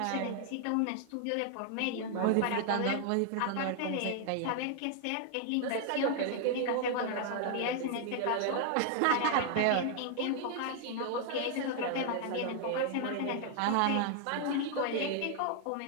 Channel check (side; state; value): both; different; correlation 0.00